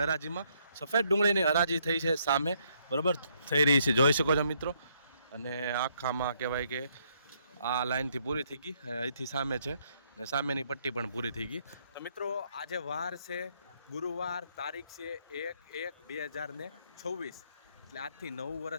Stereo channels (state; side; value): inverted; both; correlation -0.71